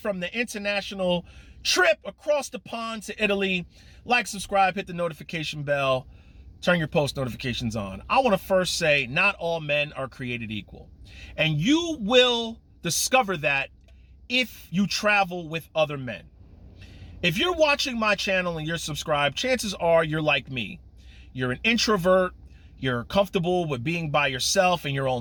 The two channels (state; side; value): identical; both; correlation 1.00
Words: the international trip across the pond to Italy. Like, subscribe, hit the notification bell, turn your post notifications on. I want to first say, not all men are created equal. And you will discover that if you travel with other men. If you're watching my channel and you're subscribed, chances are you're like me. You're an introvert. You're comfortable with being by yourself and your